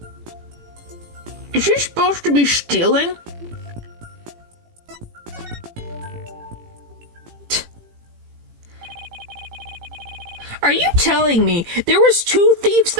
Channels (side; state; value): left; late; 18 ms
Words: Is she supposed to be stealing? Are you telling me there was 2 thieves